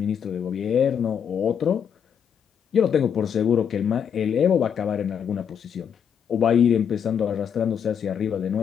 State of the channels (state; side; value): quieter; right; 7.9 dB